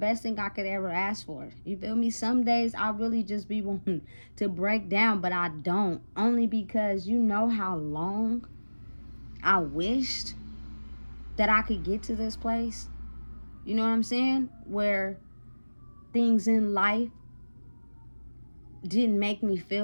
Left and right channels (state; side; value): inverted; both; correlation -1.00